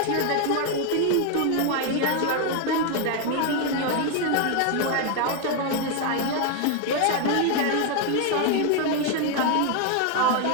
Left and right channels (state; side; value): different; both; correlation 0.01